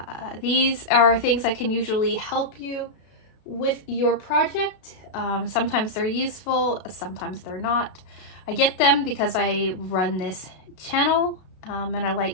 These are things that can usually help you with your project. Sometimes they're useful, sometimes they're not. I get them because I run this channel and I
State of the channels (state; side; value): late; right; 32 ms